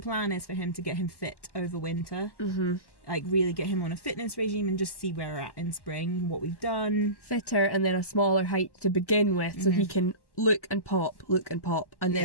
plan is for him to get him fit over winter. Like really get him on a fitness regime and just see where we're at in spring, what we've done. Fitter, and then a smaller height to begin with, so he can look and pop, and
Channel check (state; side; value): late; right; 1.1 ms